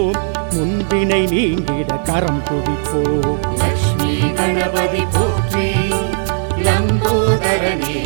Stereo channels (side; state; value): left; silent; digital silence